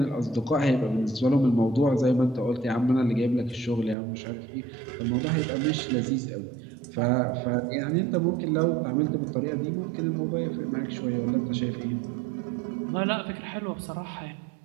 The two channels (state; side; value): drops out; left; at 4.0 s